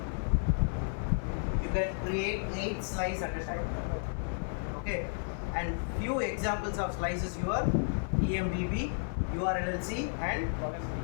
you can create 8 slices at a time. Okay, and few examples of slices your EMBB, URLLC and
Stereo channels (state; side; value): silent; right; 56 dB below the other